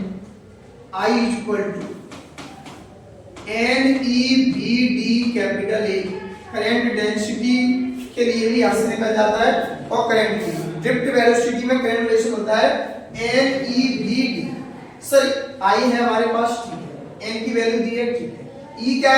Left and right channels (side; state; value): both; identical; correlation 1.00